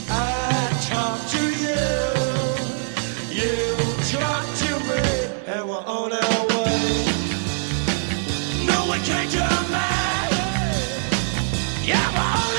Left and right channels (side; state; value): left; silent; 64 dB below the other